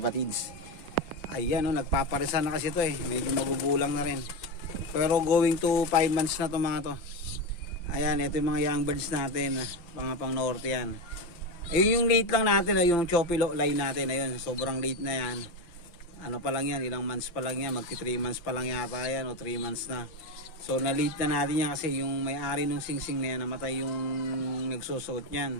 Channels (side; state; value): right; late; 5.8 ms